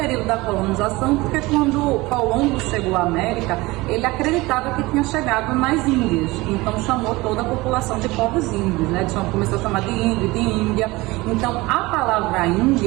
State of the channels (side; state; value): left; quieter; 21.4 dB